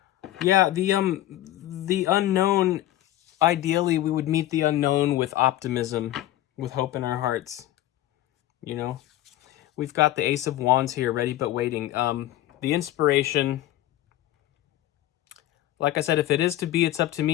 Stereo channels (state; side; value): quieter; right; 14.4 dB